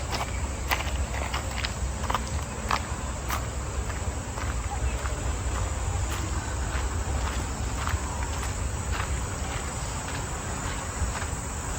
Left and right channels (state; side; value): identical; both; correlation 1.00